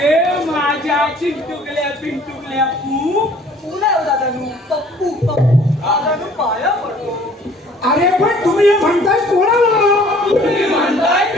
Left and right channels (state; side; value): normal; both; correlation 0.54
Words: माझ्या चिंटुकल्या पिंटुकल्या पू अरे पण तुम्ही हे म्हणताय कोणाला? तुम्ही म्हणताय